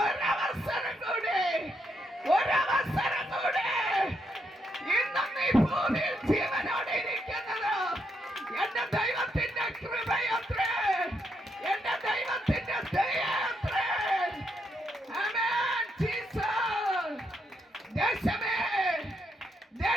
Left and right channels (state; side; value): normal; both; correlation 0.78